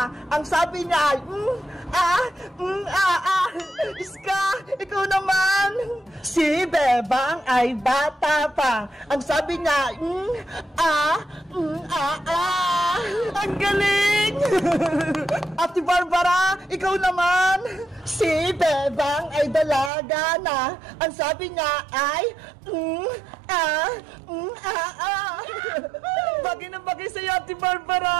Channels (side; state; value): left; drops out; at 19.9 s